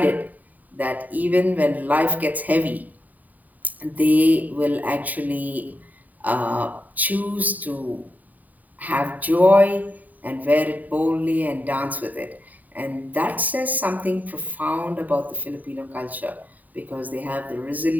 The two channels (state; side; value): late; left; 0.080 ms